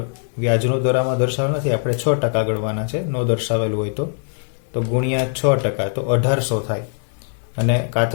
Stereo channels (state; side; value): silent; right; 65 dB below the other